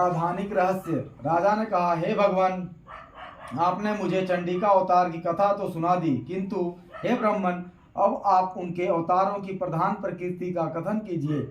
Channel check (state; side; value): identical; both; correlation 1.00